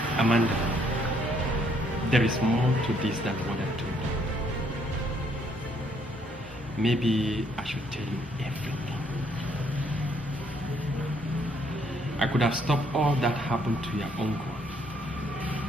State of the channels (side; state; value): both; normal; correlation 0.69